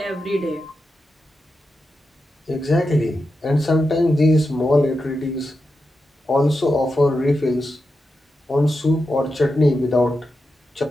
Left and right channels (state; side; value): normal; both; correlation 0.89